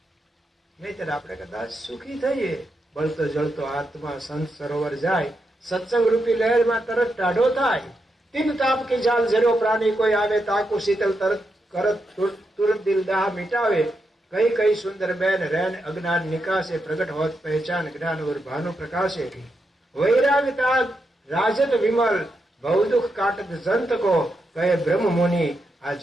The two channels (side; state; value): both; normal; correlation 0.84